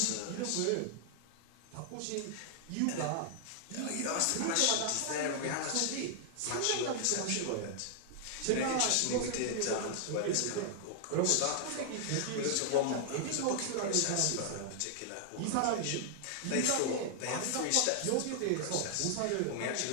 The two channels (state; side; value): different; both; correlation -0.01